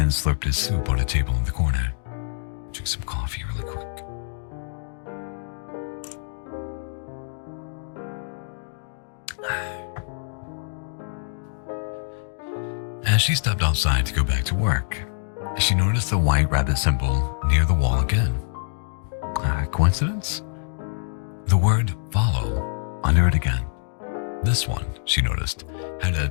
slurped his soup on a table in the corner. Drink some coffee really quick. As she stepped outside to go back to work, she noticed the white rabbit symbol near the wall again. Coincidence? The word "follow" under it again. This one, she noticed, had a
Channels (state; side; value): silent; right; digital silence